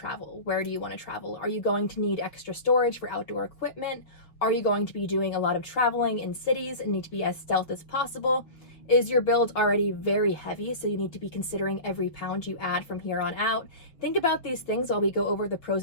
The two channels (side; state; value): right; late; 6.3 ms